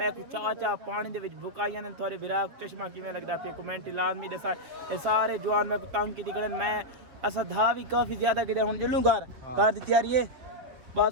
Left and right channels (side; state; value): left; late; 7.5 ms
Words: ਕੋ ਚਾਚਾ ਪਾਣੀ ਦੇ ਵਿੱਚ ਬੁਕਾਈਆਂ ਨੇ ਤੁਹਾਡੇ ਵਿਰਾਗ ਚਸ਼ਮਾ ਕਿਵੇਂ ਲੱਗਦਾ ਪਿਆ ਕਮੈਂਟ ਲਾਜ਼ਮੀ ਦੱਸਾ ਇਹ ਸਾਰੇ ਜਵਾਨ ਮੈਂ ਕੋ ਤੰਗ ਕੀਤੀ ਕੜਨ ਮੈਂ ਅਸਾਂ ਧਾ ਵੀ ਕਾਫੀ ਜ਼ਿਆਦਾ ਕਿਤੇ ਹੁਣ ਜੁਲੂ ਘਰ ਦੀ ਤਿਆਰੀ ਹੈ